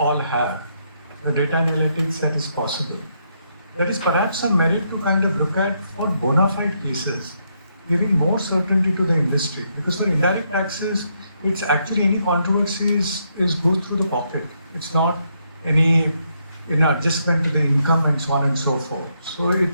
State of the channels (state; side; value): inverted; both; correlation -0.77